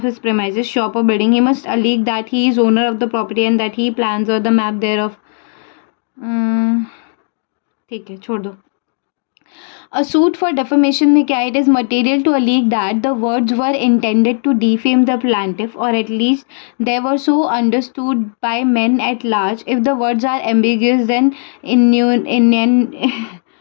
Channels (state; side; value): silent; right; 63 dB below the other